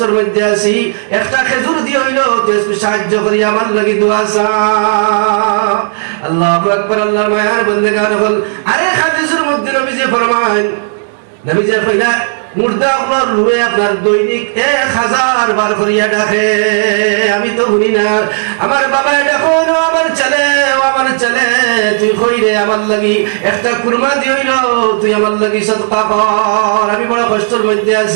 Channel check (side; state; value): left; silent; 73 dB below the other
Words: মধ্যে আছি একটা খেজুর দিয়ে হইলেও তুই সাহায্য করি আমার লাগি দোয়া সা আল্লাহু আকবার আল্লাহর মায়ার বান্দাগান হল আরেক হাদিসের মধ্যে নবীজি ফরমান নবীজি কইলা মুর্দা আপনার রুহে আপনার দৈনিক 1000 বার করিয়া ডাকে আমি তো শুনি না আমার বাবা ডাকো না আমার ছেলে তুই কইরে আমার লাগি একটা কুরমা দিইল তুই আমার লাগি সদকা কর আমি বড় কষ্টের মধ্যে